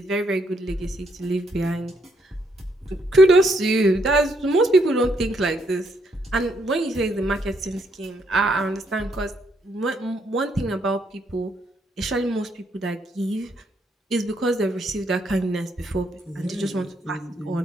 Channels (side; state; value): both; normal; correlation 0.74